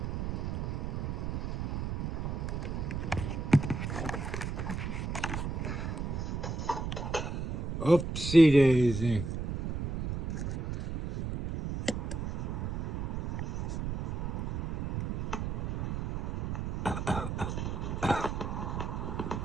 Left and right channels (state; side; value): noise; right; rumble, 3 dB below the sound